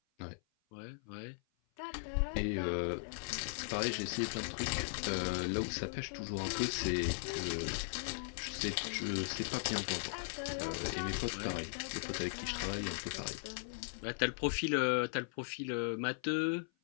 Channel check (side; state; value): right; silent; 52 dB below the other